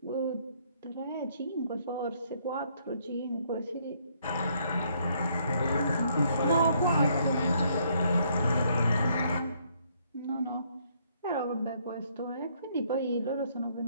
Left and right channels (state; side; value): inverted; both; correlation -0.69